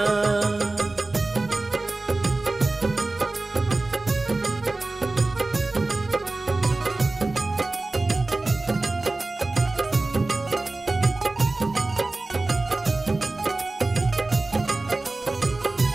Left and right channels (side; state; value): left; quieter; 3.2 dB